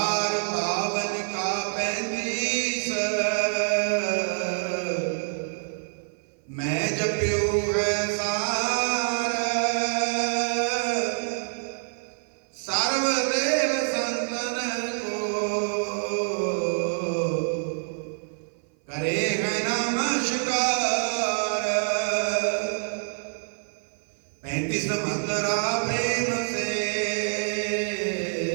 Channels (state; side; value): silent; left; 55 dB below the other